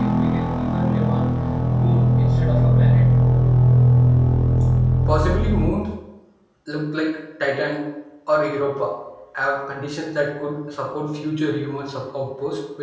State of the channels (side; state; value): both; identical; correlation 1.00